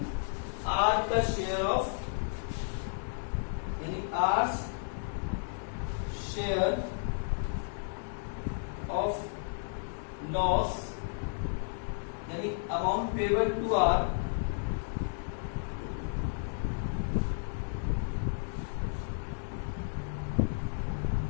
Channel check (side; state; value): right; silent; digital silence